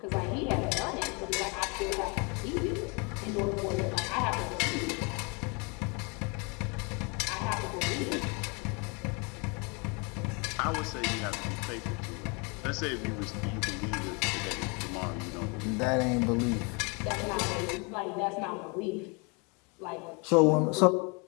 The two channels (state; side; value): quieter; right; 31.7 dB